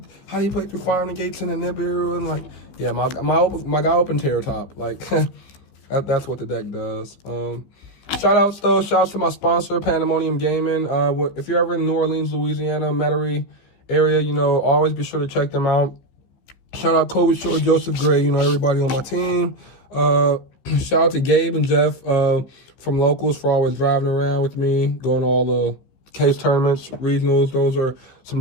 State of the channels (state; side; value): late; right; 15 ms